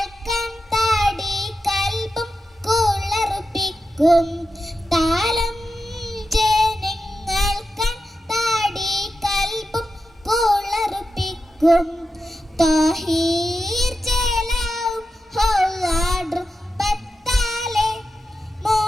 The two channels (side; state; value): both; normal; correlation 0.90